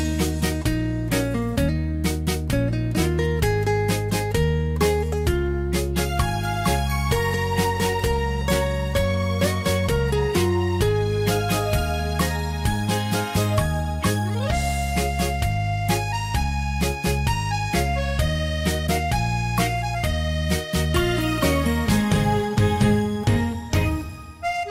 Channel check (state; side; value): identical; both; correlation 1.00